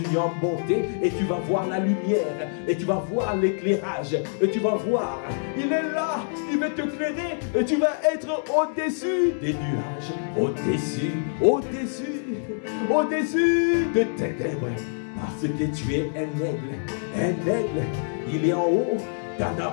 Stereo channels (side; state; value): right; silent; 61 dB below the other